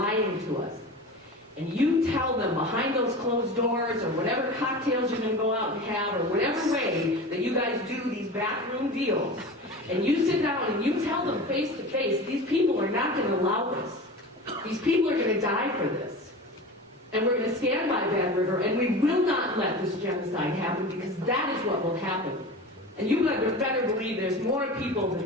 to us, and you tell them behind those closed doors, or whatever cocktails you're going to go out and have, or whatever way that you guys do these backroom deals, and you sit down and you tell them face to face, these people are not going to allow this. These people are going to die for this. And we're going to stand by Bad River, and we will not let this genocide happen, because that is what will happen. And you better believe there's more people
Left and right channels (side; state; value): both; normal; correlation 0.32